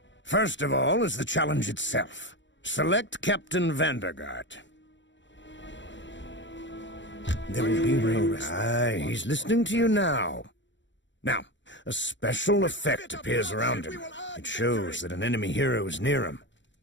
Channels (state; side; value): late; right; 0.54 ms